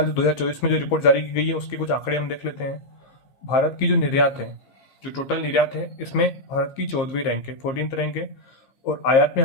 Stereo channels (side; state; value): right; late; 15 ms